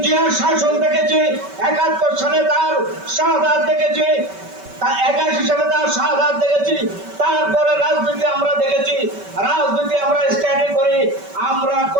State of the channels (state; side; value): late; left; 5.2 ms